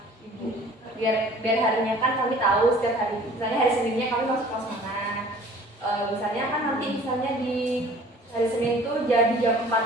ibu. Biar harinya kan kami tahu setiap hari. Misalnya hari Seninnya kami masuk kelas mana. Misalnya kan nanti misalnya di hari Senin itu jadi jam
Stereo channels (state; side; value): normal; both; correlation 0.49